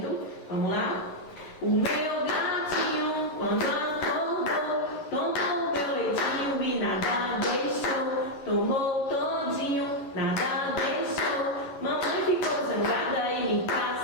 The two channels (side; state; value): right; late; 11 ms